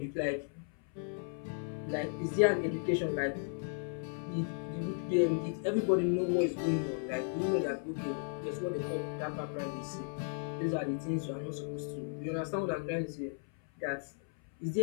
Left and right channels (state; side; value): silent; right; 54 dB below the other